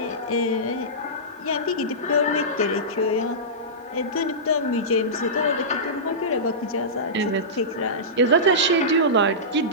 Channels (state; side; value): normal; both; correlation -0.17